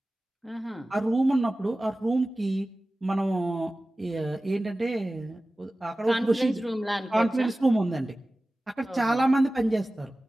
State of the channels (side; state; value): both; normal; correlation 0.96